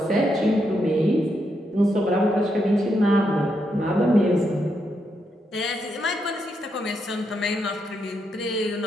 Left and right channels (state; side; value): normal; both; correlation 0.81